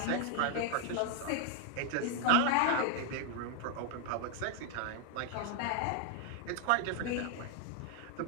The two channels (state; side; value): different; both; correlation 0.00